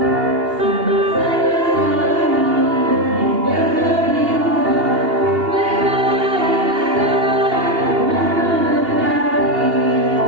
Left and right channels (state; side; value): late; left; 2.8 ms